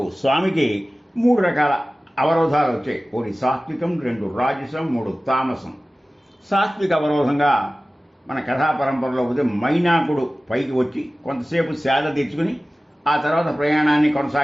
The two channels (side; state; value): both; normal; correlation 0.97